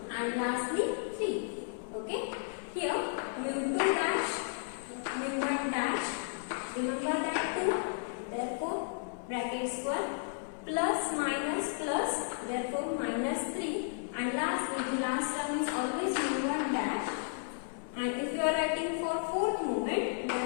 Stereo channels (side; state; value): right; silent; 55 dB below the other